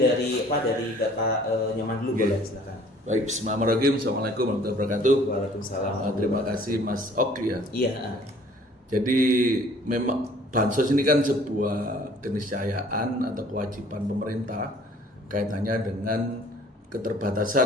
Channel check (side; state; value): both; normal; correlation 0.54